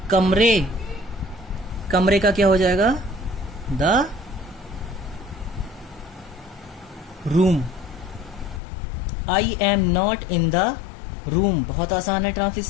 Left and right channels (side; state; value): right; drops out; at 8.6 s